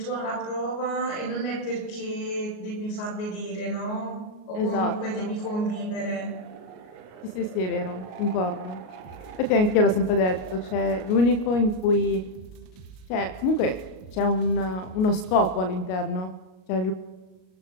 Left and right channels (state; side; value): late; right; 38 ms